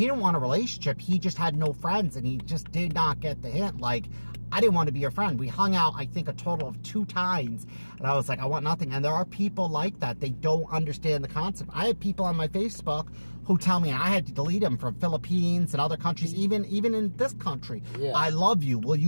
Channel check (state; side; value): inverted; both; correlation -1.00